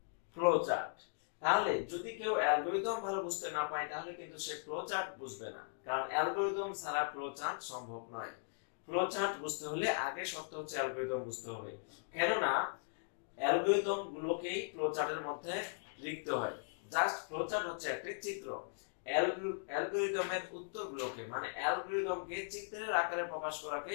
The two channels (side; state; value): right; silent; digital silence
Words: ফ্লোচার্ট। তাহলে যদি কেউ অ্যালগরিদম ভালো বুঝতে না পায় তাহলে কিন্তু সে ফ্লোচার্ট বুঝবে না, কারণ অ্যালগরিদম ছাড়া ফ্লোচার্ট সম্ভব নয়। ফ্লোচার্ট বুঝতে হলে আগে শর্ত হচ্ছে অ্যালগরিদম বুঝতে হবে, কেননা অ্যালগরিদম গুলোকেই ফ্লোচার্টের মধ্যে লিখতে হয়। জাস্ট ফ্লোচার্ট হচ্ছে একটি চিত্র। অ্যালগরিদমের উত্তরগুলোকে মানে অ্যালগরিদমকে চিত্রের আকারে প্রকাশ